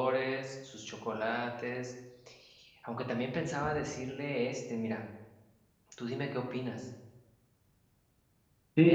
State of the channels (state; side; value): identical; both; correlation 1.00